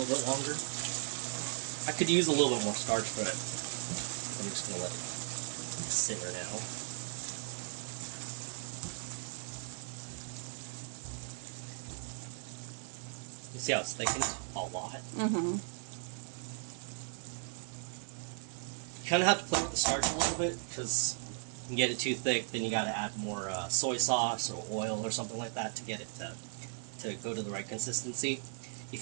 bit longer. I could use a little bit more starch, but I'm just going to let it simmer now. You see how it's thickened a lot? Mm-hmm. You kind of have to play with the starch a little bit, because if you get it too thick, then you got to add more soy sauce or oil or something like that to get it to go to the right consistency.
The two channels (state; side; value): silent; left; 54 dB below the other